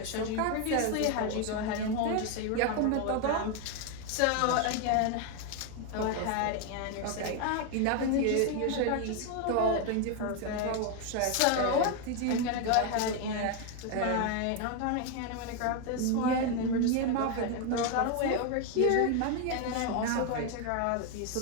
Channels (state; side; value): different; both; correlation 0.01